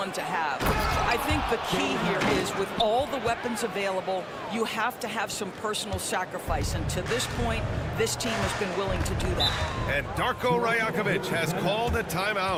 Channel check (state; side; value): identical; both; correlation 1.00